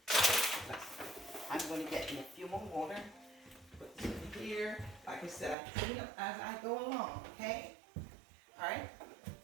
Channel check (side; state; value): left; drops out; at 5.6 s